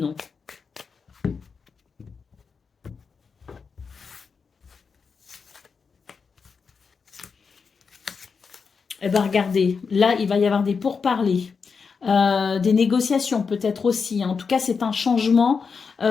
Eh bien, regardez, là, il va y avoir des pourparlers, des négociations peut-être aussi, hein. En tout cas, c'est un changement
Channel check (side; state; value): right; quieter; 5.4 dB